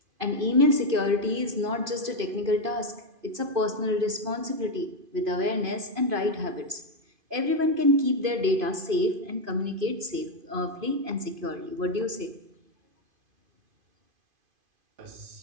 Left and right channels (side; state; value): left; late; 2.5 ms